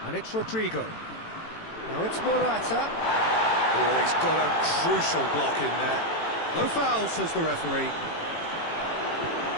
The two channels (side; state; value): right; late; 18 ms